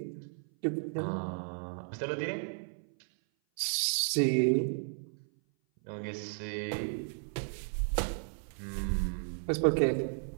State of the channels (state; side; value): silent; left; 55 dB below the other